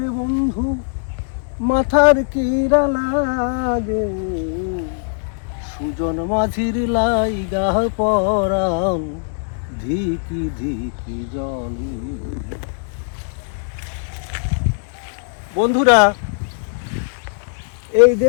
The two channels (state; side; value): silent; right; digital silence